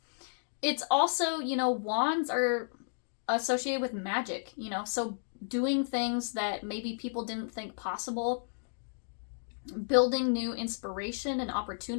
it's also, wands are associated with magic, you know, so doing things that maybe people didn't think possible, building new inspiration and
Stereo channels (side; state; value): right; silent; digital silence